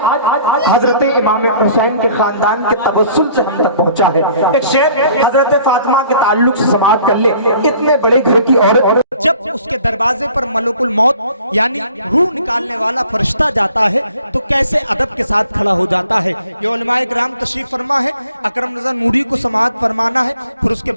حضرت امام حسین کے خاندان کے تبسل سے ہم تک پہنچا ہے ایک شعر حضرت فاطمہ کے تعلق سے سماعت کر لیں اتنے بڑے گھر کی عورت جب اس کے دروازے پر ملک الموت یعنی روح نکالنے والا فرشتہ جاتا ہے تو کیسے ادب کے ساتھ کھڑا ہو جاتا ہے یہ علماء کرام تشریف فرما ہے اکرم رضا نوری کو سماعت فرمانا ہے پھر اس کے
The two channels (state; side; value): inverted; both; correlation -0.55